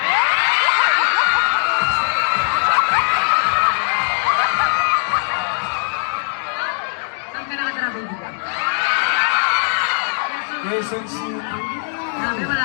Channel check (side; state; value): right; silent; 66 dB below the other